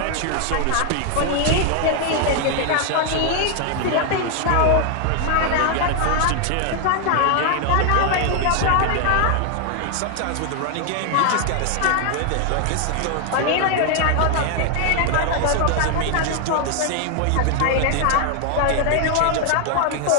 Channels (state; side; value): different; both; correlation 0.00